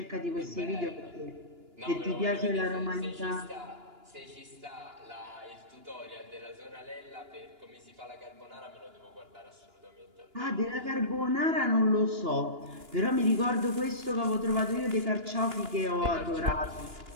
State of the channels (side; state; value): left; late; 2.9 ms